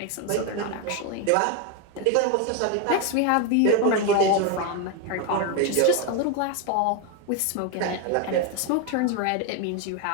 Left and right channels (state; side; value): different; both; correlation 0.01